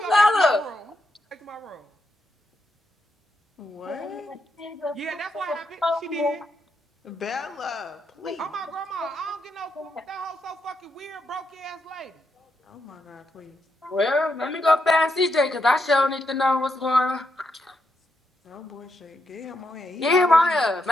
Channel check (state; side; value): normal; both; correlation 0.81